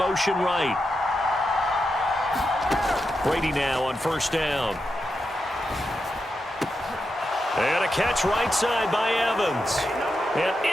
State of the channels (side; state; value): both; normal; correlation 0.87